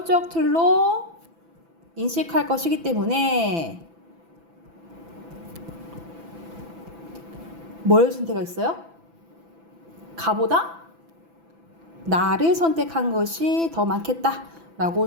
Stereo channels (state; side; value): late; left; 6.0 ms